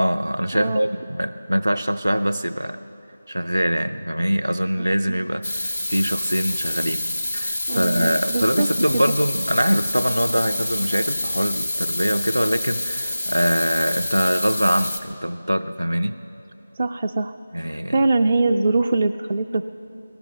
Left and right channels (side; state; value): both; inverted; correlation -0.96